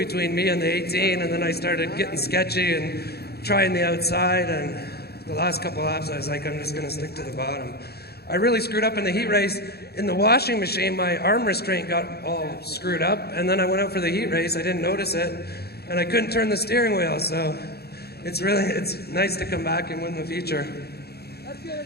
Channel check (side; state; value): right; late; 0.46 ms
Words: me and the 18, and then I started getting sketchy and trying the outside, and the last couple laps I was like, I'm just going to stick to the bottom. I really screwed up in the heat race. In the washing machine, my arm restraint got all screwed up, and then I went out for the heat race. I didn't notice it, and I couldn't turn the steering wheel, so it's nice to come back and win the feature.